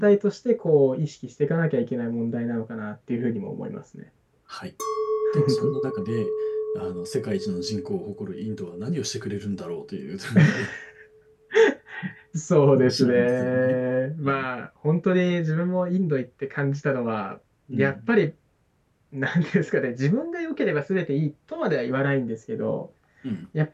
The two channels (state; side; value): identical; both; correlation 1.00